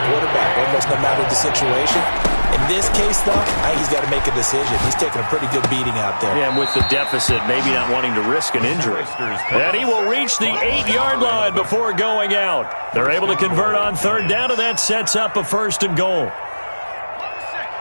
quarterback, almost no matter the situation. In this case, though, I think he's got to make a decision. He's taking a pretty good beating out there. Yeah, and with the deficit, maybe not wanting to risk an injury. And he will reach the 8-yard line before going out. They're able to convert on third down, and that sets up a 1st and goal.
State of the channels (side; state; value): both; inverted; correlation -1.00